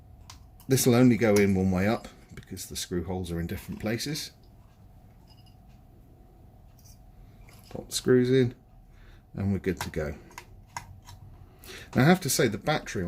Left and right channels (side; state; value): both; identical; correlation 1.00